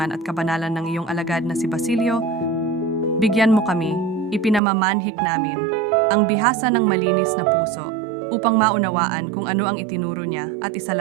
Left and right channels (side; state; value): left; drops out; at 4.6 s